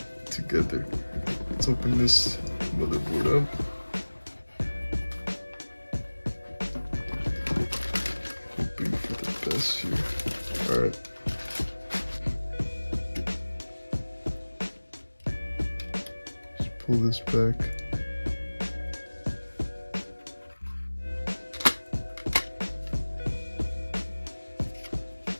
together. Let's open this motherboard up. Hoping for the best here. Alright. Just pull this back.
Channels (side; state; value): both; inverted; correlation -1.00